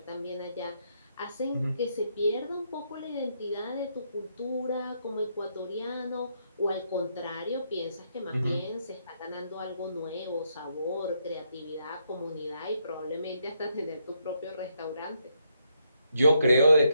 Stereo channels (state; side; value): inverted; both; correlation -0.77